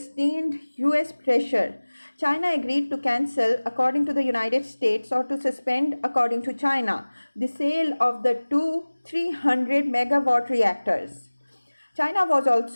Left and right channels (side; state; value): both; inverted; correlation -1.00